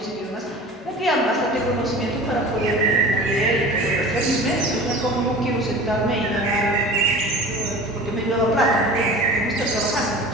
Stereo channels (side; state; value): both; normal; correlation 0.38